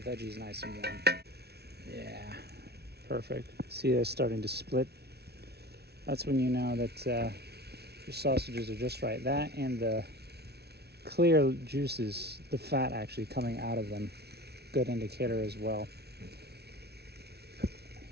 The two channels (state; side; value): late; left; 0.48 ms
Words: nice and warm. Yeah, perfect. See, they're starting to split. That's when you know that your sausages are just right. That and the clear juices, the fat actually coming out of them, good indicator as well.